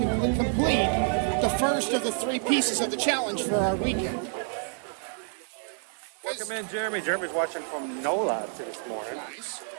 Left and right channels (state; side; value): silent; left; 59 dB below the other